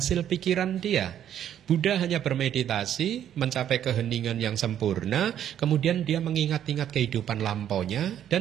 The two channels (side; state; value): left; quieter; 10.3 dB